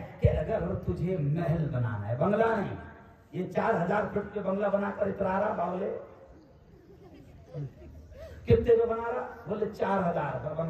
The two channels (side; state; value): both; identical; correlation 1.00